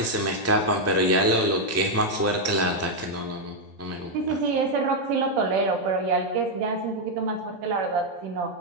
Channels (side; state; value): both; normal; correlation -0.01